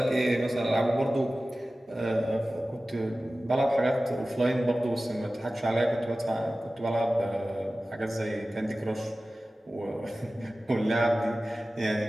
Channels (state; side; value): normal; both; correlation 0.96